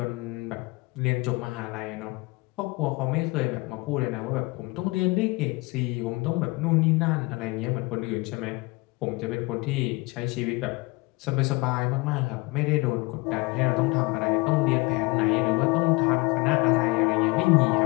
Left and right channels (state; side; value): quieter; right; 25.0 dB